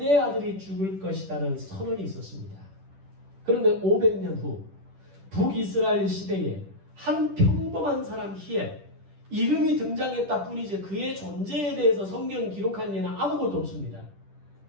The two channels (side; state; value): left; late; 10 ms